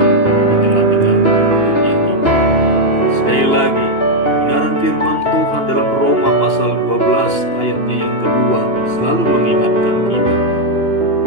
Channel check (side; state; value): right; late; 2.8 ms